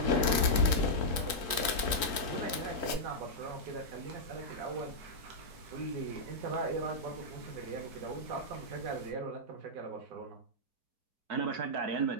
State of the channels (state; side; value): late; left; 3.7 ms